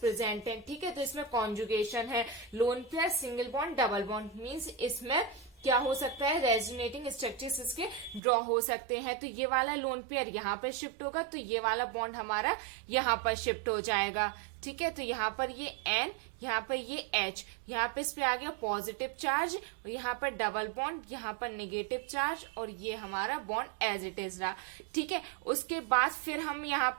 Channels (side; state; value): left; drops out; at 8.2 s